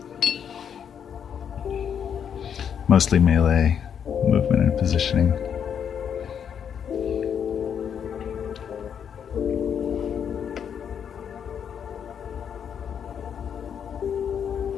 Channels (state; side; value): quieter; right; 8.0 dB